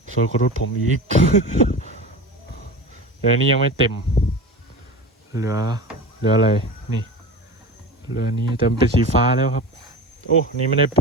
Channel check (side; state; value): both; normal; correlation 0.31